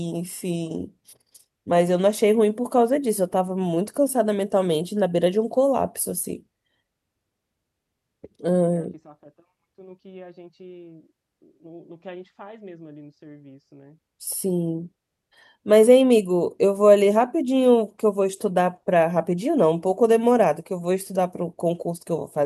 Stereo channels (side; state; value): both; identical; correlation 1.00